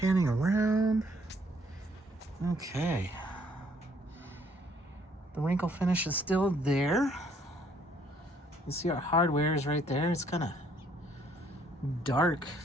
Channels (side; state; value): both; normal; correlation 0.64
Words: around. Okay. The wrinkle finish is still there. You see our hardware is right there. It's kind of dark.